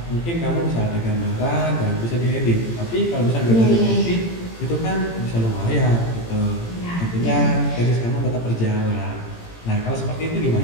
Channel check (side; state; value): right; late; 18 ms